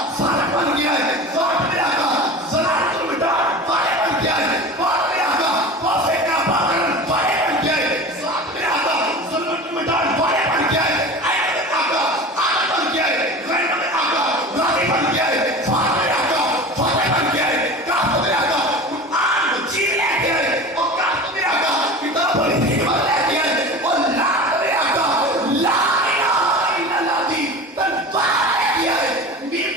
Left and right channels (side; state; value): both; normal; correlation 0.34